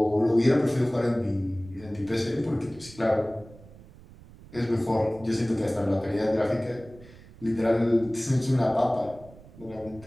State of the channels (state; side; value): noise; right; rumble, 21 dB below the sound